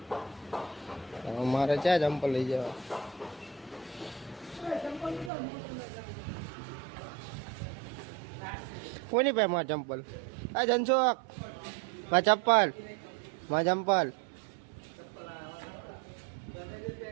મારે ક્યાં ચંપલ લઈ જવા. કોની પાસે માં ચંપલ? આ ધનસુખ માં ચપ્પલ, માં ચંપલ.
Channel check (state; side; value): drops out; left; at 5.3 s